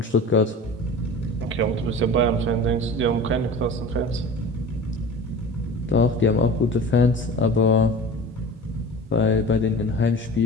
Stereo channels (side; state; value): both; normal; correlation 0.37